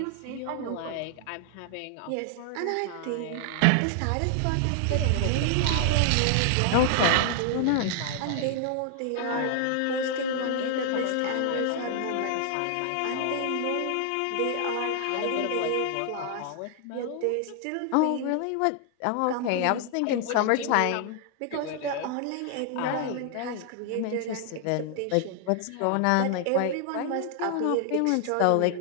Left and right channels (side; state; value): both; different; correlation 0.00